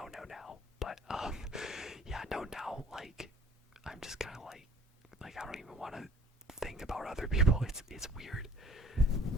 now. But yeah, no, now like I'm just kind of like I don't even want to think about other people. It's weird.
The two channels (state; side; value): normal; both; correlation 0.53